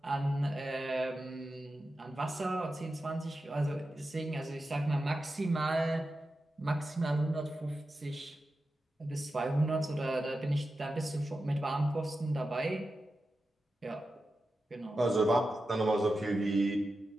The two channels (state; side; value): normal; both; correlation 0.91